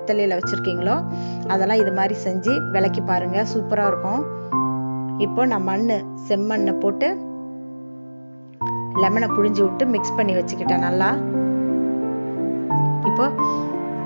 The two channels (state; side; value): inverted; both; correlation -1.00